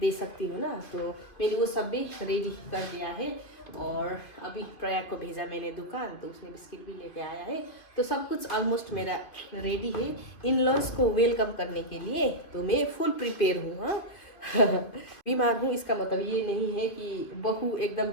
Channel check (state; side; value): late; right; 2.7 ms